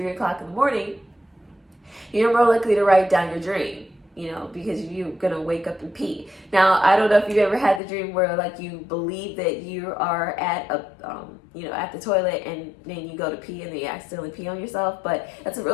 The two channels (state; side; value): drops out; right; at 7.8 s